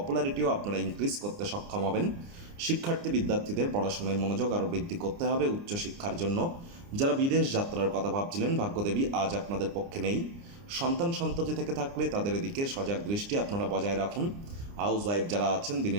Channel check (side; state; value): left; late; 29 ms